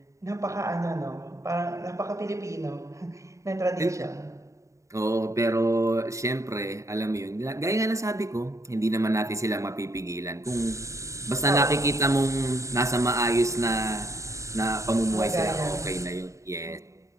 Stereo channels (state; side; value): late; left; 0.15 ms